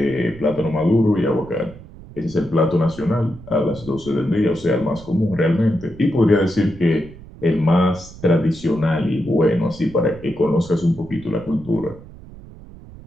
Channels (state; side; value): noise; right; rumble, 18 dB below the sound